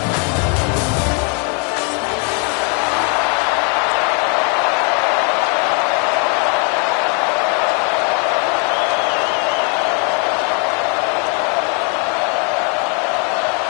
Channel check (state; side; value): quieter; right; 37.8 dB